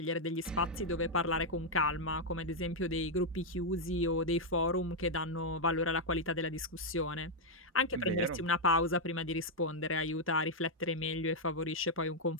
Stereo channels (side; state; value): both; normal; correlation -0.01